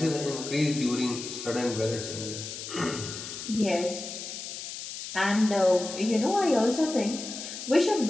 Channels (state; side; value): noise; left; hiss, 9 dB below the sound